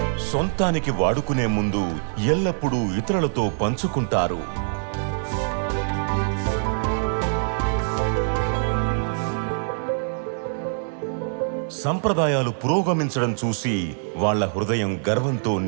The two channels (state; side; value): silent; left; 63 dB below the other